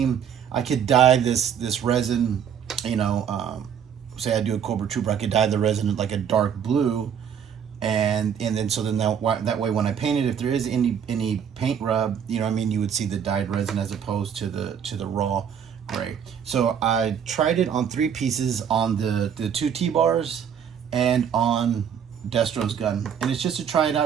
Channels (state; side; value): quieter; left; 8.1 dB